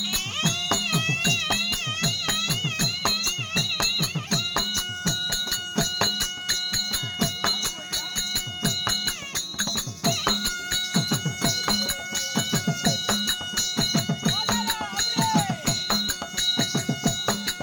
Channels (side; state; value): both; identical; correlation 1.00